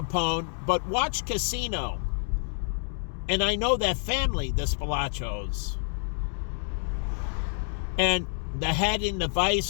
but watch Casino. And I know that family, the Spilachos. And the head in the vice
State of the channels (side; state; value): right; silent; 59 dB below the other